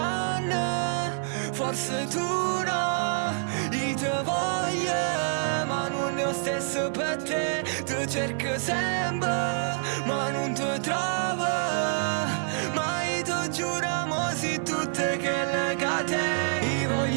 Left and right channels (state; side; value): silent; left; digital silence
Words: forse tu no. Io te voglio, ma non è lo stesso per te. Ti cerco sempre, ma non ti trovo. Ma io ti giuro, mo si tutte che le cate. Io